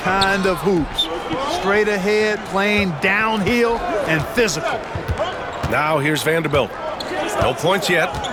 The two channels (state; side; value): identical; both; correlation 1.00